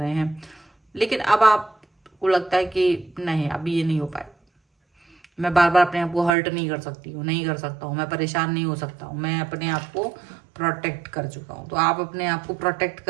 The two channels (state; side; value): drops out; left; at 6.3 s